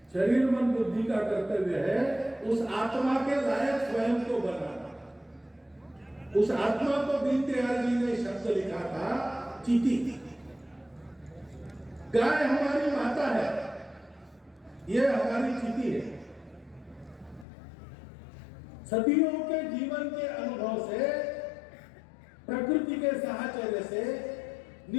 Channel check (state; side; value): drops out; right; at 17.4 s